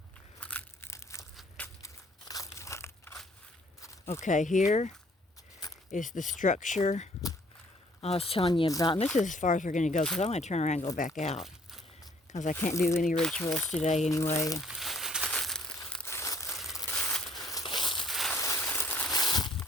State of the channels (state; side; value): normal; both; correlation 0.60